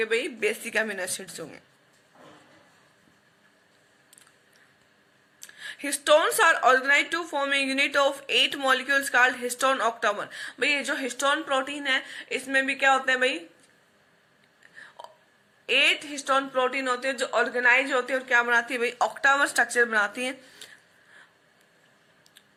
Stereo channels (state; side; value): identical; both; correlation 1.00